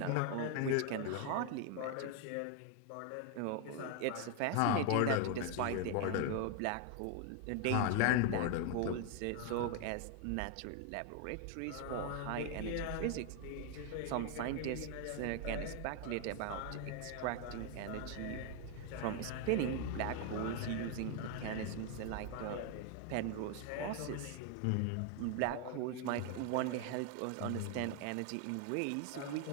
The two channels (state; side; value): different; both; correlation 0.01